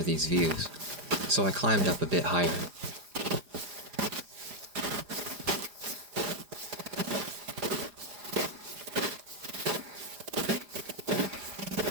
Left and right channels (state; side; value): late; left; 4.9 ms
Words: these views, so I climbed up a bit higher.